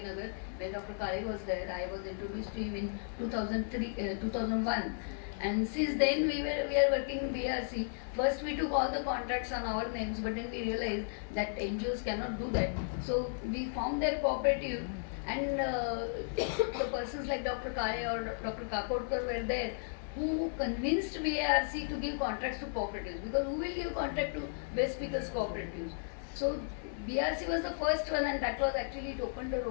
When Dr. Kale was there, I was introduced to him in 2001. And since then, we are working in BRC. First, we took all the contracts on our names, but then we realized that NGOs cannot do that. So we formed their cooperative, and the persons like Dr. Kale or Dr. Kakodkar were there, who convinced BARC to give contracts to cooperatives, because who will give contract to waste pickers cooperatives? So BRC was the first one, and that was actually, it opened the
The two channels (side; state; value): right; silent; 55 dB below the other